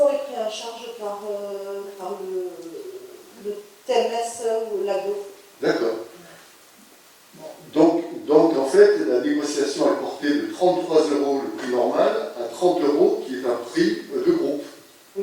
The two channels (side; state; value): both; identical; correlation 1.00